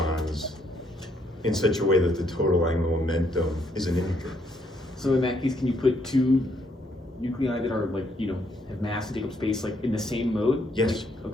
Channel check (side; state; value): both; normal; correlation 0.71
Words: in such a way that the total angular momentum is an integer. So in that case, can you put two nuclei that are like have mass and take up space like in the same mode? Yes.